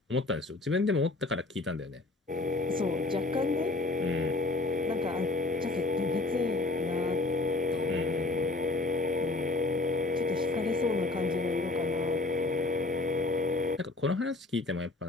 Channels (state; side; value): quieter; right; 3.0 dB